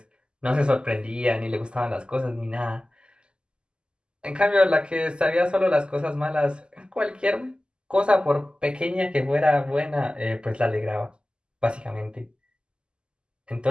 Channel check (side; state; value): left; late; 0.049 ms